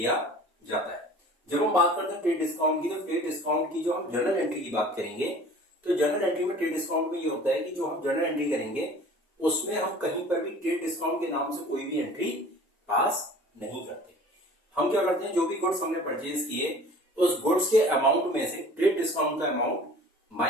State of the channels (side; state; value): both; normal; correlation 0.46